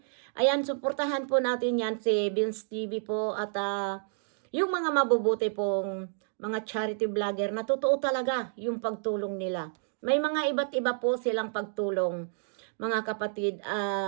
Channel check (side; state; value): left; silent; digital silence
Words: Ayan, suportahan po natin yan si Vince TV po at yung mga mabubuti pong mga charity vlogger na totoo talaga yung pagtulong nila. May mga iba't iba po silang pagtulong, mga kapatid.